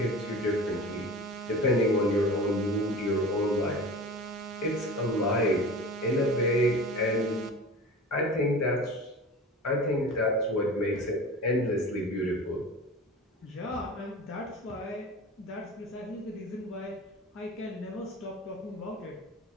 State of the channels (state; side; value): normal; both; correlation 0.35